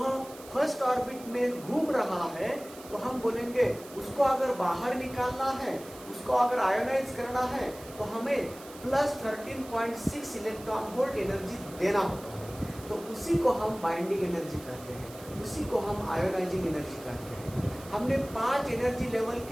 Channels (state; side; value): noise; right; hiss, 18 dB below the sound